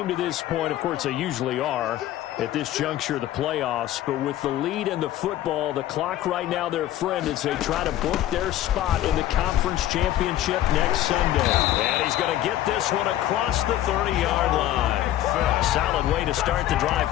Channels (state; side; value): quieter; right; 13.5 dB